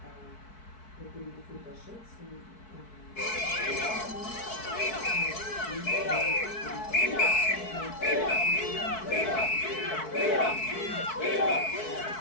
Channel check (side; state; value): right; late; 4.6 ms